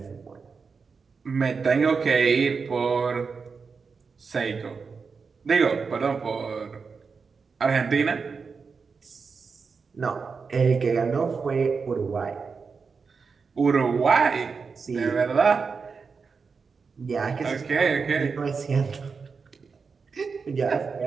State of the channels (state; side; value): quieter; left; 5.2 dB